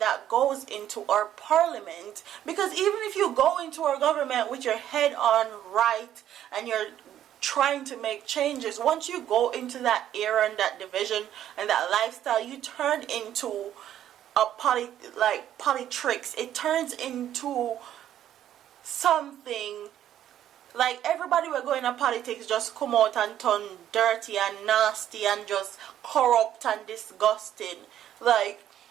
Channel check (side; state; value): left; quieter; 11.2 dB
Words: goes into our parliament, because even if you go into our government with your head on right and you're trying to make changes, once you go into that era and that division and that lifestyle, you turn into a politics. It turns into something like everybody we're going to politics just come out and turn dirty and nasty and just corrupt and disgusting. Like,